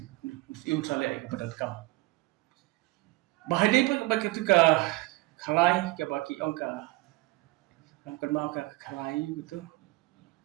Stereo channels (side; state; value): left; quieter; 21.3 dB